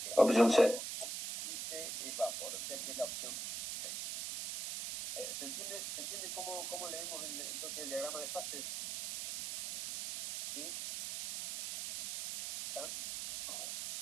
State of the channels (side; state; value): right; noise; hiss, 5 dB below the sound